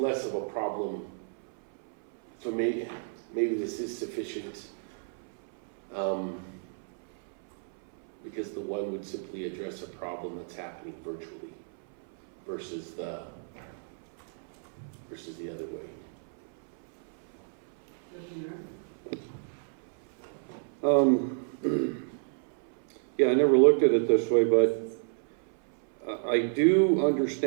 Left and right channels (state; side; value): silent; left; 57 dB below the other